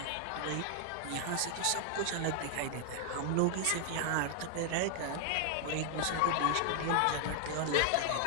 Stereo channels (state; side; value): different; both; correlation 0.00